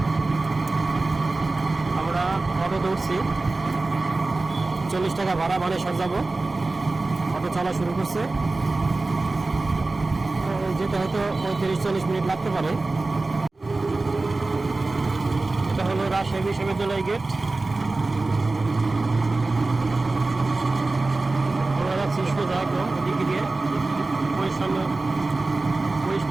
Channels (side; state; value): left; quieter; 3.3 dB